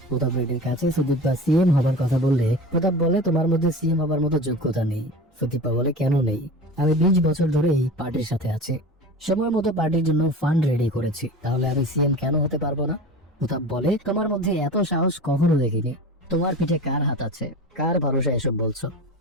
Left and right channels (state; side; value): normal; both; correlation 0.33